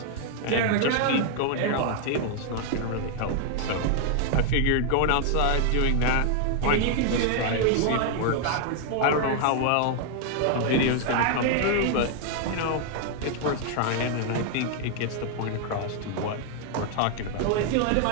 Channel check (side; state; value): both; different; correlation 0.00